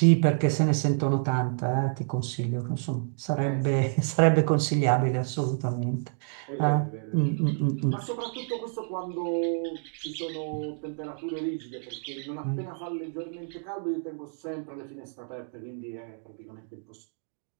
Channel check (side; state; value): left; silent; digital silence